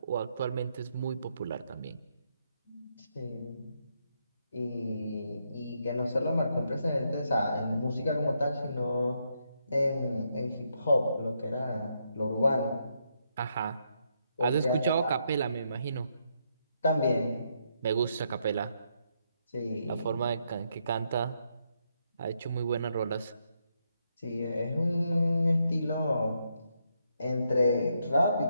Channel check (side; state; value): both; inverted; correlation -0.78